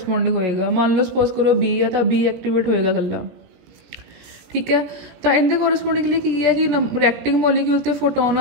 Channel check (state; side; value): late; left; 17 ms